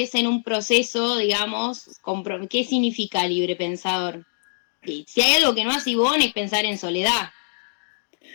en un proceso, digamos, ¿qué significa libre pensador? Y si hay algo que no hace Ivonne es pensar en soledad.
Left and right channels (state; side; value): silent; right; digital silence